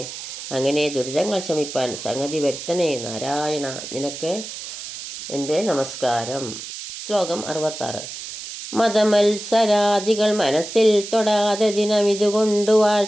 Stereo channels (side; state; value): right; noise; hiss, 10 dB below the sound